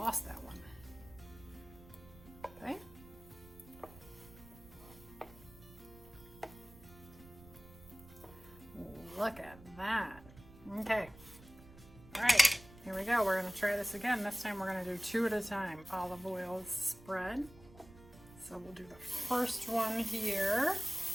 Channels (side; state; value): right; noise; rumble, 20 dB below the sound